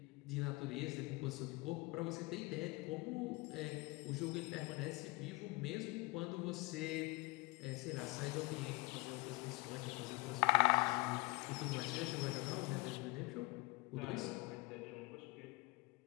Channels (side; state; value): right; quieter; 24.5 dB